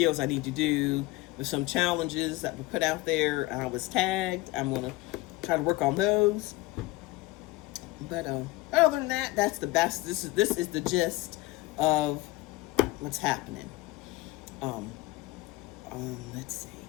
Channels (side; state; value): right; quieter; 19.9 dB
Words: I need to do with some challenges that were put out there. I was tagged. I'm gonna try to work on those. But other than that, that's the best. This is the gist of what's happening. Let's see.